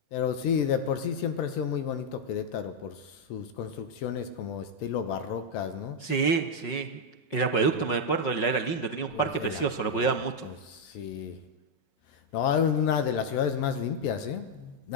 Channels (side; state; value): right; late; 5.5 ms